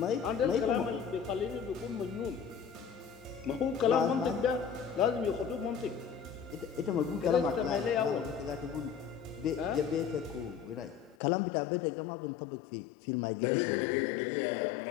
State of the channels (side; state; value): right; drops out; at 11.2 s